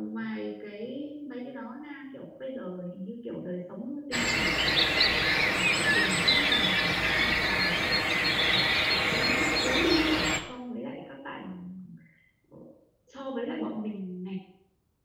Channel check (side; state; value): both; identical; correlation 1.00